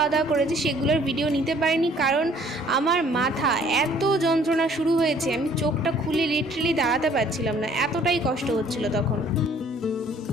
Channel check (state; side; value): normal; both; correlation 0.57